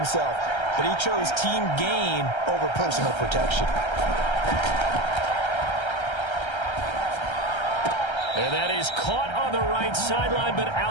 But he chose team gain over personal protection. And that is caught on the right sideline, but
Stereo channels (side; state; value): right; late; 1.3 ms